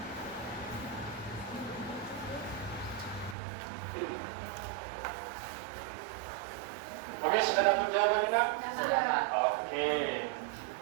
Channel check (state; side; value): drops out; left; at 3.4 s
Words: Oke, sudah dapat jawabannya nak? Sudah. Oke.